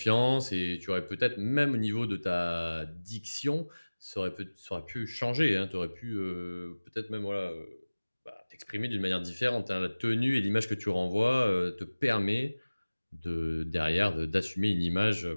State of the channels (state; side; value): inverted; both; correlation -1.00